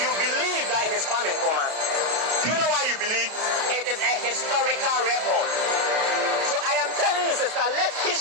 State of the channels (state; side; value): late; left; 33 ms